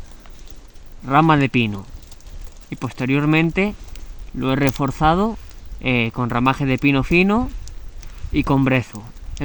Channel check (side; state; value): both; identical; correlation 1.00